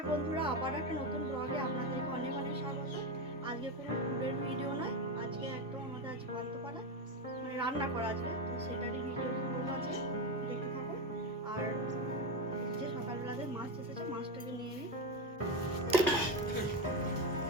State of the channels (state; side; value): normal; both; correlation 0.14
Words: বন্ধুরা, আবার একটা নতুন ব্লগে আপনাদেরকে অনেক অনেক স্বাগত। আজকে কোনো ফুডের ভিডিও নয়, আজকে একদম আমাদের আজ পান্তাপাড়া মানে রান্না করা আজকে, তো সেটারই ভিডিও করবো আজকে, দেখতে থাকুন। আর যে সকালবেলাতে মাছ এসেছে, মাছটাকে নিয়ে নিই।